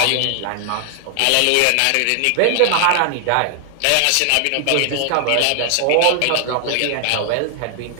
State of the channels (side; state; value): both; different; correlation 0.00